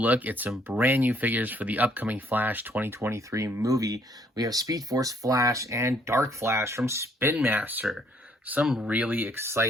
at some brand new figures for the upcoming Flash 2023 movie. We have Speed Force Flash and Dark Flash from Spin Master. Some really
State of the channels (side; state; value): both; normal; correlation 0.66